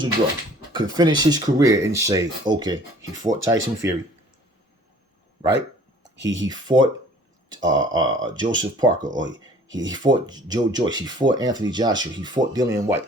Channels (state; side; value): normal; both; correlation 0.52